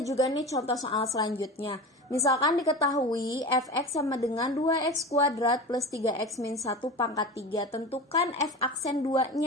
nih contoh soal selanjutnya. Misalkan diketahui fx sama dengan 2x kuadrat plus 3x min 1 pangkat 3. Tentukan f aksen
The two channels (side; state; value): both; normal; correlation 0.30